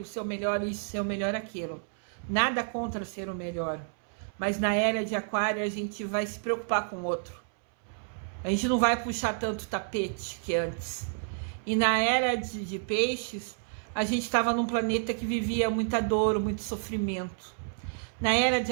ser o melhor isso, ser o melhor aquilo. Nada contra ser o melhor. Mas na era de aquário a gente vai se preocupar com o outro. A gente não vai puxar tanto tapete que antes. E na era de peixes, a gente estava num planeta que vivia muita dor, muito sofrimento. Na era de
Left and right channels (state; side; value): silent; left; 58 dB below the other